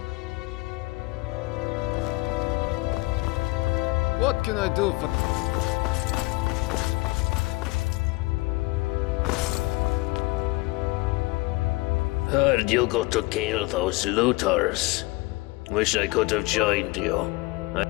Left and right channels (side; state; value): right; quieter; 23.6 dB